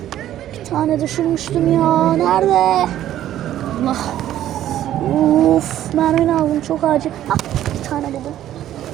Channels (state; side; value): quieter; left; 12.3 dB